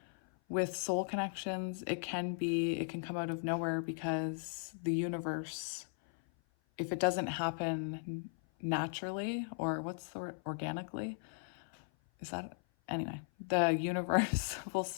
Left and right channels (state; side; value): silent; right; 53 dB below the other